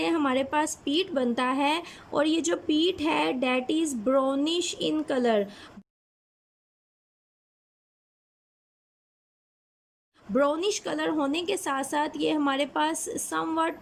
हमारे पास पीट बनता है और ये जो पीट है that is brownish in colour. Brownish colour होने के साथ साथ ये हमारे पास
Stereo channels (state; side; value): identical; both; correlation 1.00